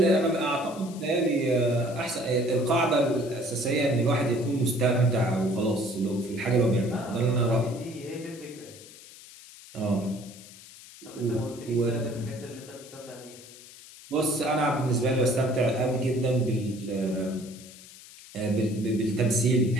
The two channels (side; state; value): left; noise; hiss, 19 dB below the sound